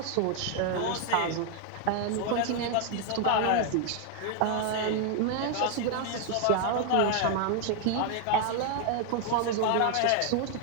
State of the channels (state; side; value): different; both; correlation 0.01